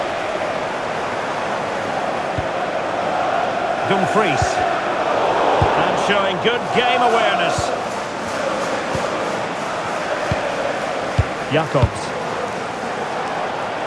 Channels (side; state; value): both; identical; correlation 1.00